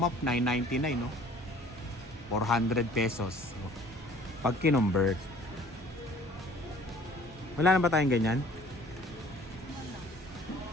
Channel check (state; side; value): normal; both; correlation 0.52